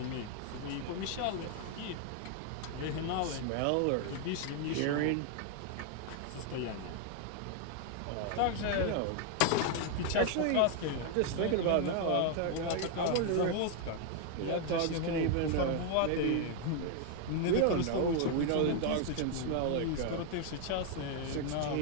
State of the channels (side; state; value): both; different; correlation 0.00